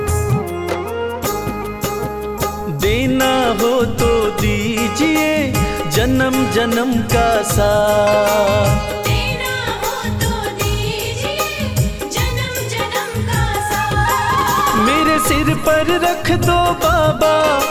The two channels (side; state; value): both; identical; correlation 1.00